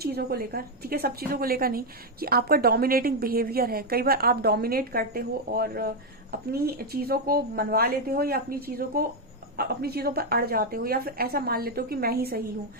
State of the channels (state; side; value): normal; both; correlation 0.02